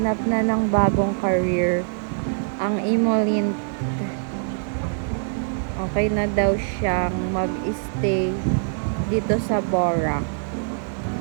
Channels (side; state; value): left; silent; digital silence